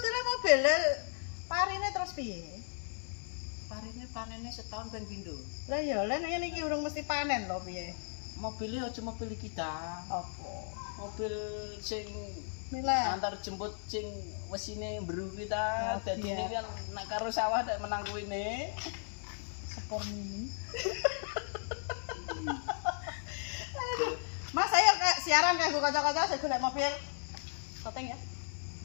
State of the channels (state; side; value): silent; right; 54 dB below the other